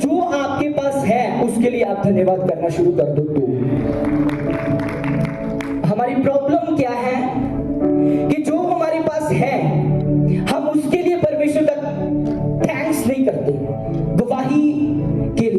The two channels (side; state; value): both; identical; correlation 1.00